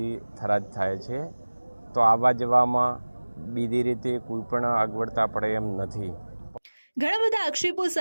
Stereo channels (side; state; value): both; inverted; correlation -1.00